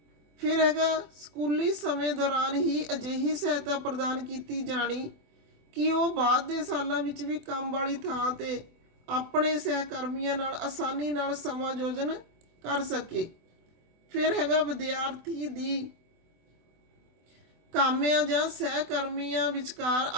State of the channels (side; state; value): left; late; 24 ms